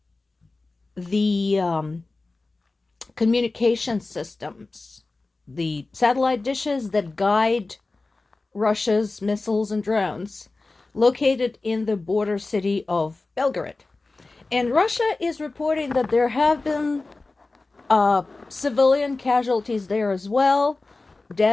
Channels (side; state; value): right; quieter; 3.4 dB